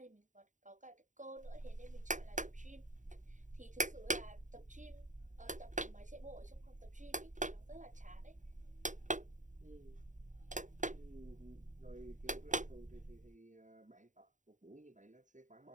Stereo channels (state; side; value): late; left; 0.36 ms